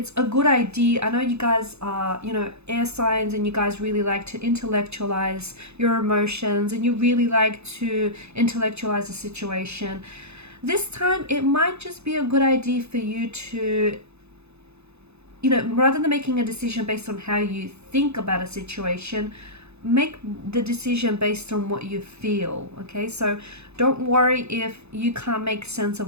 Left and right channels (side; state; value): left; late; 0.80 ms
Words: a good idea. I know you guys are, air signs, and you guys really like to intellectualize your emotions, and you really like to intellectualize a situation. This time, it might just be a good idea for you to, rather than making a decision based on how you think about a situation, make the decision based on what you feel. Okay, so don't worry if you can't make sense